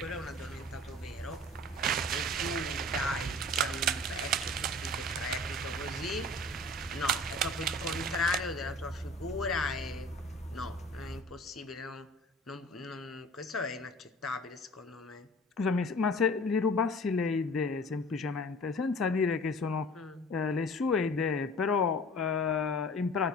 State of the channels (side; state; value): both; normal; correlation 0.44